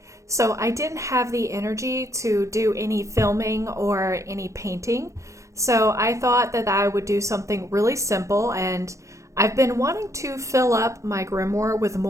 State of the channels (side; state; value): left; late; 0.15 ms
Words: so I didn't have the energy to do any filming or any painting. So I thought that I would do something really simple, and I've been wanting to fill up my grimoire with